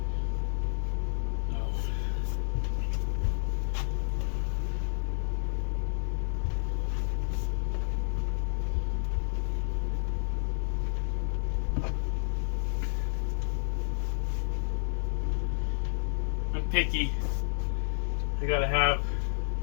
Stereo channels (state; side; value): silent; right; digital silence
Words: Oh. I'm picky. I gotta have